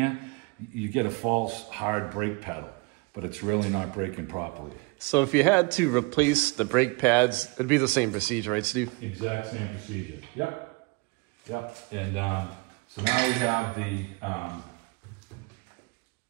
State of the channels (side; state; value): left; quieter; 27.5 dB